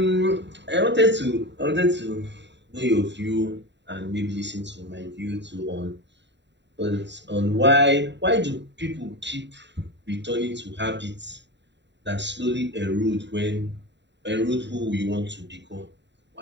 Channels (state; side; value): late; left; 0.52 ms